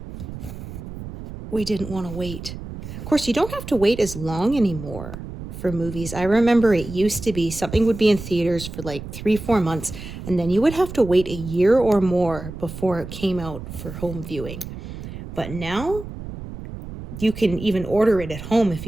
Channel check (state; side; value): noise; right; rumble, 10 dB below the sound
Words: We didn't want to wait. Of course, you don't have to wait as long anymore for movies. I remember it used to be something would be in theaters for like 3-4 months, and then you would have to wait a year or more before it came out for home viewing. But now you can even order it at home if